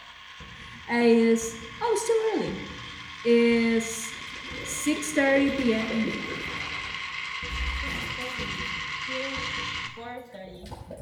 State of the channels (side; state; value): both; identical; correlation 1.00